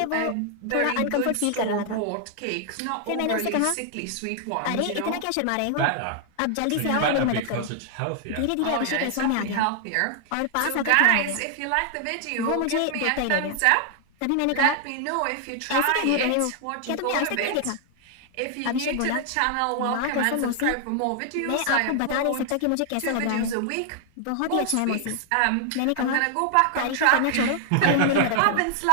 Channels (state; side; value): different; both; correlation 0.00